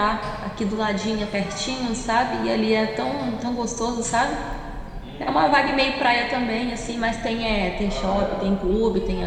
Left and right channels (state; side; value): identical; both; correlation 1.00